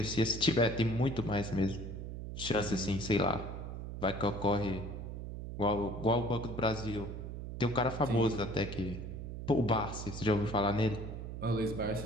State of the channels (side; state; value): right; noise; hum, 7 dB below the sound